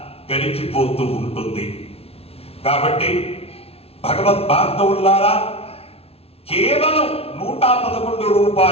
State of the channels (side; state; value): right; late; 0.29 ms